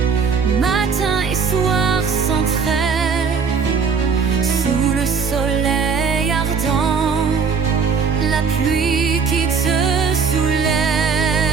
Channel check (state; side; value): quieter; left; 5.7 dB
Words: matin et soir sans trêve, sous le soleil ardent, la pluie qui te soulève.